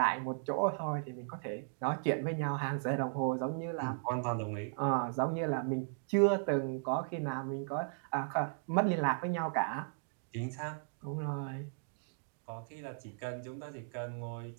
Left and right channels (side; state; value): left; silent; digital silence